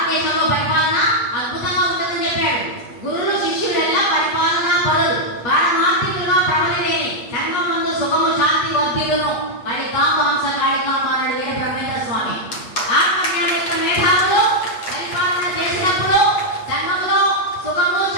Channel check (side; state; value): right; late; 8.3 ms